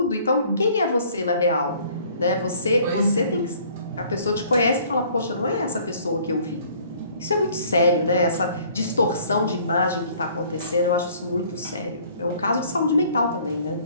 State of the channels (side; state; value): both; inverted; correlation -0.56